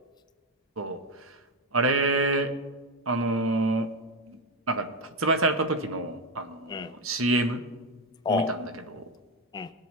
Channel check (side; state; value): both; normal; correlation 0.11